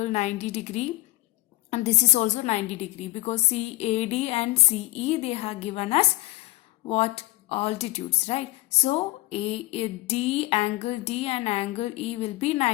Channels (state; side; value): quieter; right; 19.9 dB